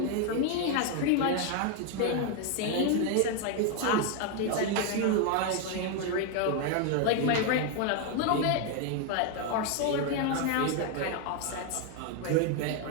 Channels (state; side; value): different; both; correlation 0.01